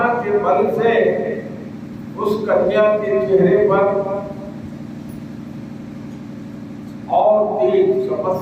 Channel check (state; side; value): identical; both; correlation 1.00